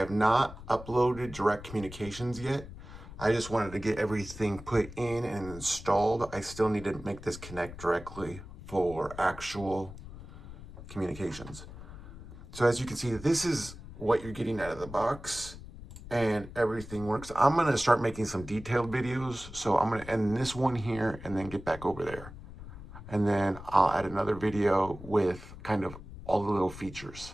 not uploaded direct communications yet. I just wanted to get everything put in and installed. I still need to make this connect directly for actual communications. So as you can see, this is what you're getting out of the box, and everything works. I'm gonna start making some detailed videos. So I'm gonna end this one here and then get back over there. And then I'll add another video with kind of all the little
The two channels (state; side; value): noise; left; rumble, 14 dB below the sound